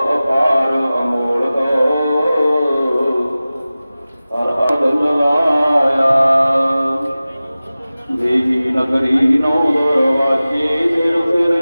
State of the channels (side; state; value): both; inverted; correlation -0.97